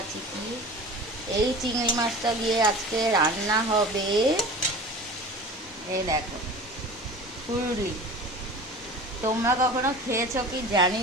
কি। এই চিংড়ি মাছটা দিয়ে আজকে রান্না হবে, এই দেখো, ফুললি। তোমরা কখনো খেয়েছো কি জানি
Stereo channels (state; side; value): normal; both; correlation 0.37